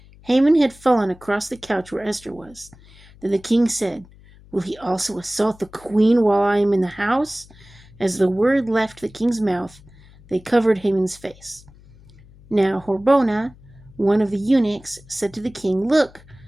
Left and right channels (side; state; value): left; noise; hum, 24 dB below the sound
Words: Haman had fallen across the couch where Esther was. Then the king said, "Will he also assault the queen while I am in the house?" As the word left the king's mouth, they covered Haman's face. Now Harbona, one of the eunuchs, said to the king, "Look,